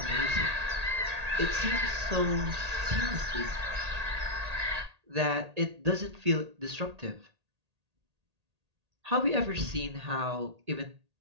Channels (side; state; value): left; late; 1.8 ms